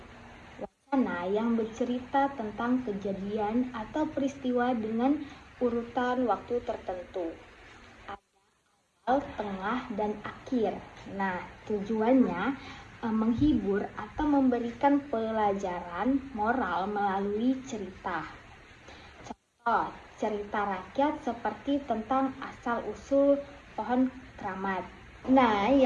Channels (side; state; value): both; identical; correlation 1.00